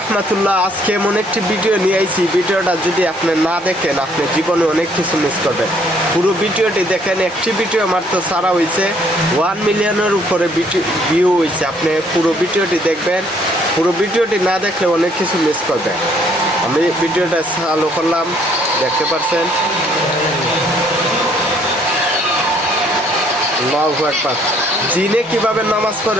আজকে এমন একটি ভিডিও নিয়ে আইছি, ভিডিওটা যদি আপনি না দেখেন আপনি জীবনে অনেক কিছু মিস করবেন। পুরো ভিডিওটি দেখেন। একটি ভিডিও মাত্র ছাড়া হয়েছে 1 মিলিয়নের উপরে ভিউ হয়েছে। আপনি পুরো ভিডিওটি দেখবেন, পুরো ভিডিওটি না দেখলে অনেক কিছু মিস করবেন। আমি ভিডিওটা চালু করলাম, দেখতে পাচ্ছেন। আল্লাহু আকবার। জিনে কিভাবে নামাজ পড়ে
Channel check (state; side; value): normal; both; correlation 0.64